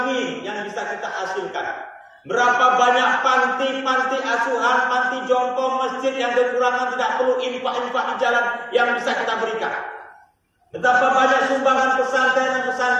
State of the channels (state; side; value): identical; both; correlation 1.00